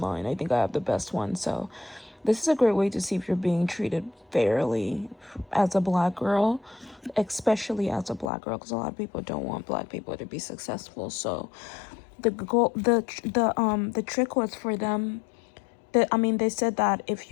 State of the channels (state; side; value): drops out; right; at 8.3 s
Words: I think I have the best one. So this is a great way to see if you're being treated fairly as a black girl, especially as a black girl, because a lot of people don't want black people to be successful. So the goal, the trick was for them. They said that